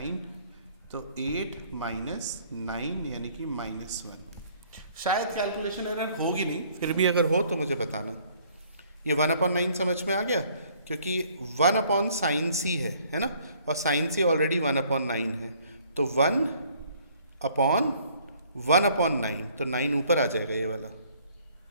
तो 8 - 9 यानी कि -1। शायद कैलकुलेशन एरर होगी नहीं, फिर भी अगर हो तो मुझे बताना। ये 1/9 समझ में आ गया, क्योंकि 1/sin c है ना, और sin c ऑलरेडी 1/9 है, तो 1/1/9, तो 9 ऊपर आ जाएगा ये वाला।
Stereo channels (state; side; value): inverted; both; correlation -0.60